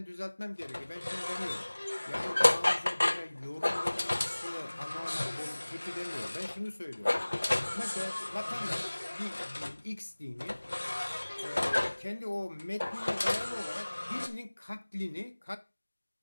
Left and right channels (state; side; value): inverted; both; correlation -1.00